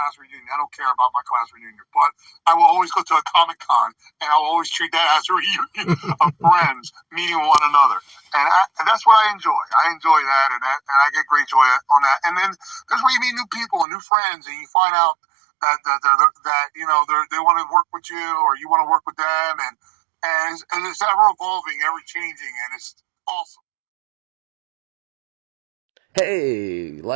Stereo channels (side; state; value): left; drops out; at 13.9 s